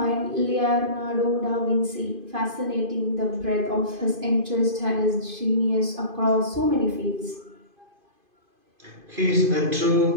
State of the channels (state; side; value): late; left; 2.5 ms